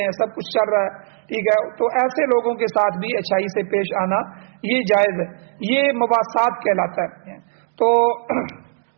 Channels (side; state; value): left; silent; digital silence